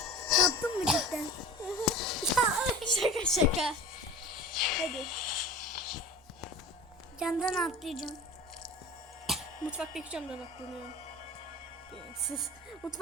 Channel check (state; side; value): normal; both; correlation 0.37